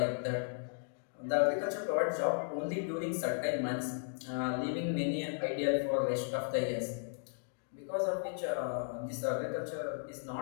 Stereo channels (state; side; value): silent; right; digital silence